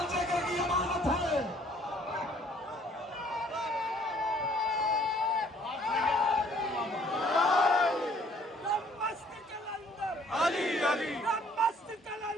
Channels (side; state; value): both; normal; correlation 0.59